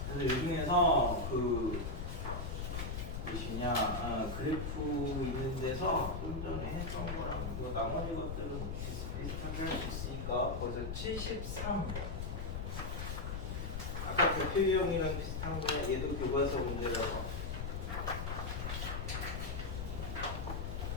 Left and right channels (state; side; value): noise; left; rumble, 3 dB below the sound